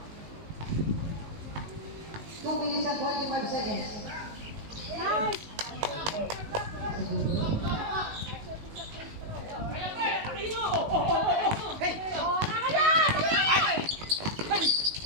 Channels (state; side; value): late; left; 19 ms